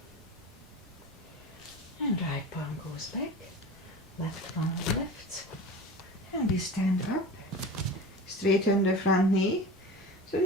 And right palm goes back. Left palm lifts. And we stand up. Straighten the front knee. So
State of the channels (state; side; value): normal; both; correlation 0.33